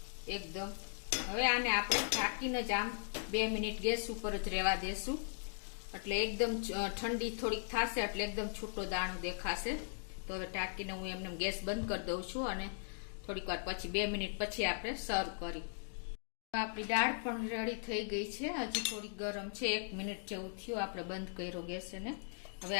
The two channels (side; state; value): right; silent; digital silence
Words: એકદમ. હવે આને આપણે ઢાંકીને જ આમ 2 મિનિટ ગેસ ઉપર જ રહેવા દેશું, એટલે એકદમ ઠંડી થોડીક થશે એટલે એકદમ છૂટો દાણો દેખાશે. તો હવે ઢાંકીને હું એમને ગેસ બંધ કરી દઉં છું અને થોડીક વાર પછી 2 મિનિટ પછી આપણે સર્વ કરી. આપણી દાળ પણ રેડી થઈ ગઈ છે, હજી થોડી ગરમ છે. 1 મિનિટ જેવું થયું આપણે બંધ કર્યો ગેસ એને. હવે